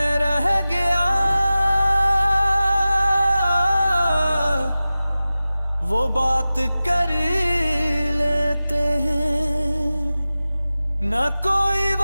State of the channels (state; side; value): inverted; both; correlation -0.96